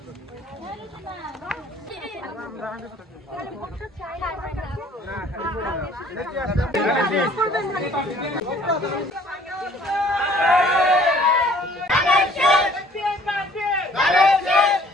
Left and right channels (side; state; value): both; normal; correlation 0.56